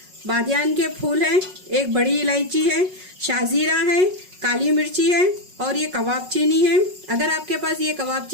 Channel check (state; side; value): late; left; 5.4 ms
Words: बादियान के फूल हैं, 1 बड़ी इलायची है, शाजीरा है, काली मिर्ची है और ये कबाब चीनी है। अगर आपके पास ये कबाब